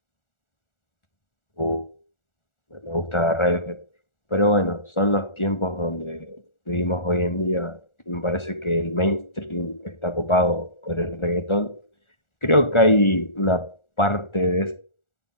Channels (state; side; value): late; right; 1.4 ms